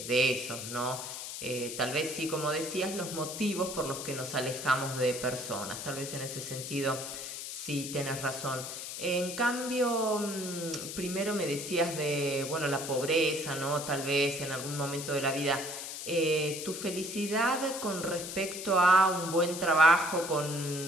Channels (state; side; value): noise; left; hiss, 7 dB below the sound